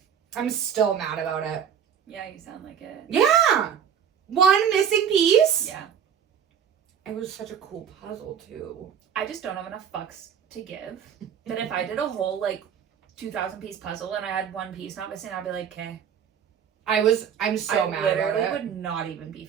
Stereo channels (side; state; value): left; quieter; 8.2 dB